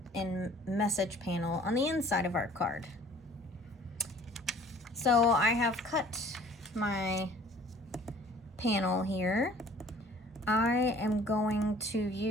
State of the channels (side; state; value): both; normal; correlation 0.51